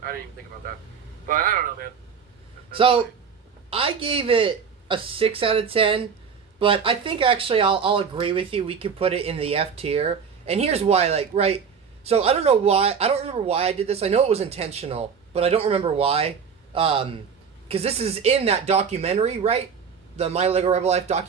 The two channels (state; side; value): quieter; left; 6.5 dB